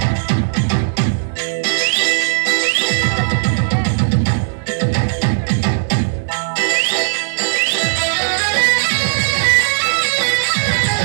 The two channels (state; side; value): silent; left; digital silence